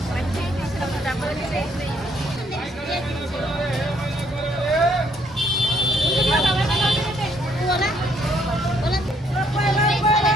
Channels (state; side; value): normal; both; correlation 0.68